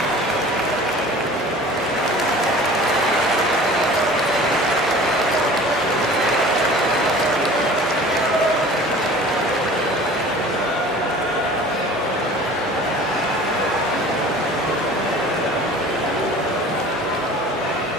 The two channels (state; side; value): normal; both; correlation 0.43